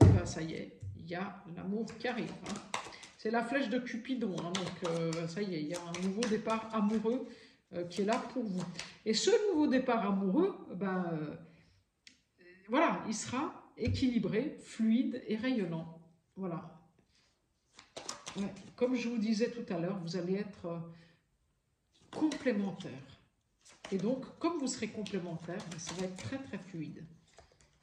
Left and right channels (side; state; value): both; identical; correlation 1.00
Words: ça y est, il y a l'amour qui arrive. Hein. C'est la flèche de Cupidon, hein, donc ça y est, il y a un nouveau départ amoureux qui est là pour vous. Et ce nouveau départ amoureux, voilà, il sera équilibré, fluide et rayonnant. Voilà. Ouais, comme je vous disais tout à l'heure, vous allez être complémentaires. Et donc, comme vous serez complémentaires, ça va être très très fluide.